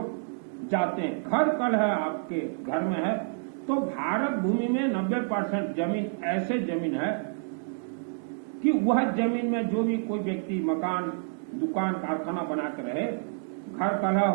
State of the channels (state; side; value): silent; left; digital silence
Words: जाते हैं। घर कल है आपके घर में है तो भारत भूमि में 90% जमीन ऐसे जमीन है कि वह जमीन में जो भी कोई व्यक्ति मकान दुकान कारखाना बना कर रहे, घर कलह